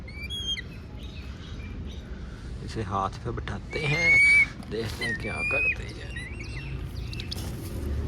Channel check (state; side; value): identical; both; correlation 1.00